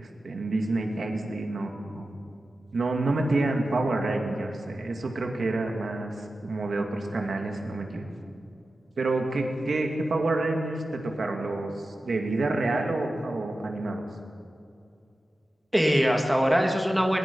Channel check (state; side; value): normal; both; correlation 0.93